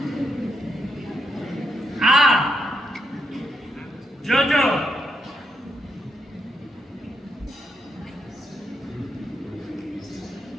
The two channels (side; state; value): both; normal; correlation 0.80